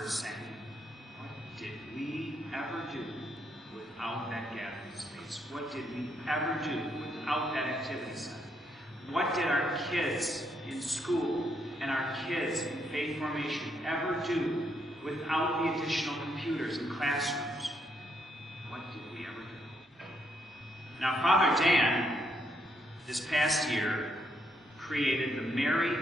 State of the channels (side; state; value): both; normal; correlation 0.76